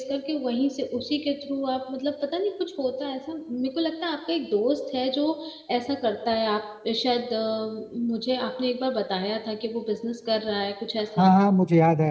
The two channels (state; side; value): identical; both; correlation 1.00